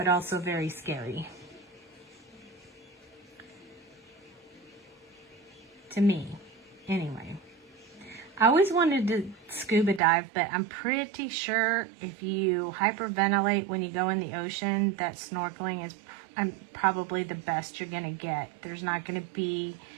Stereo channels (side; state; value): left; drops out; at 10.0 s